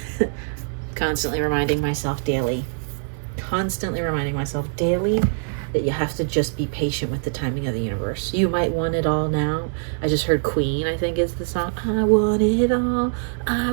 constantly reminding myself daily. Constantly reminding myself daily that you have to just be patient with the timing of the universe. You might want it all now. I just heard Queen, I think is the song. I want it all.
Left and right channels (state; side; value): silent; left; digital silence